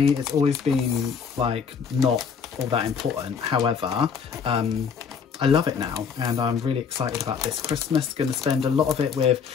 It's always been like not all that important. However, I love it now, and I'm really excited about this Christmas. Going to spend a lot of it with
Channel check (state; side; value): quieter; right; 6.4 dB